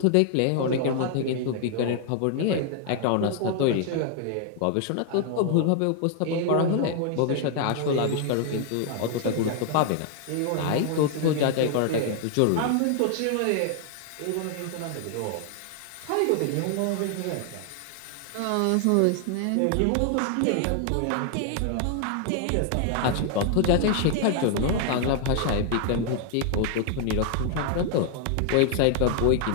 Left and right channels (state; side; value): different; both; correlation 0.00